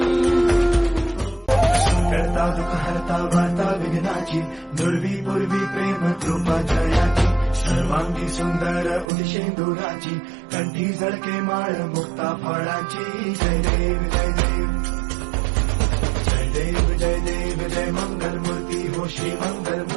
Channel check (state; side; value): drops out; left; at 9.1 s